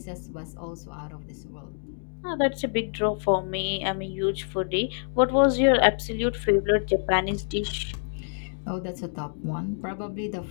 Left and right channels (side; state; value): right; silent; digital silence